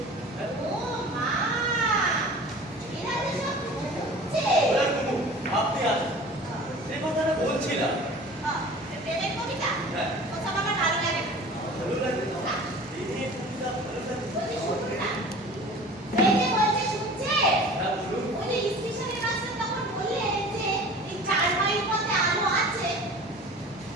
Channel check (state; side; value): normal; both; correlation 0.42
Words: হ্যাঁ? ও মা, এরা যে সব ঘুমছে। ওরা ঘুমুক, আপনি আসুন। যে কথাটা বলছিলাম, প্রেমের কবিতা হ্যাঁ। ওসব আমার ভালো লাগে না। ভালো লাগে না? এই নিয়ে কবিতা ভালো লাগে? বলছি শুনুন না, এই যে বলছে শুনছে, হ্যাঁ, বলুন। ওই যে স্টেশনের মাস্টার তখন বললেন যে এই 4 মাইল পথে আলো আছে।